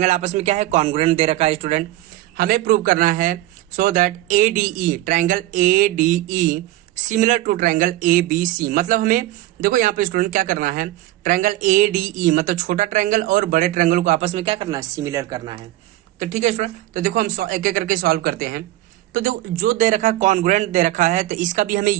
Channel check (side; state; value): left; quieter; 15.9 dB